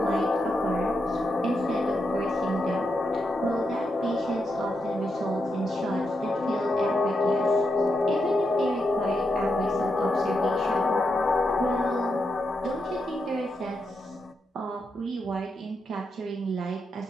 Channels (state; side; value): normal; both; correlation 0.84